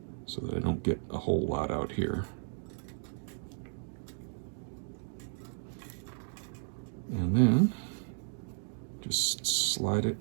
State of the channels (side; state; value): left; silent; digital silence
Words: so that I don't get a whole lot out here. And then just slide